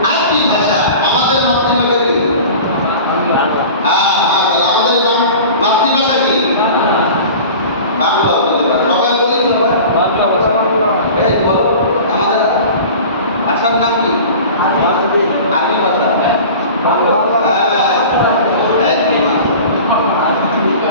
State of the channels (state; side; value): inverted; both; correlation -0.38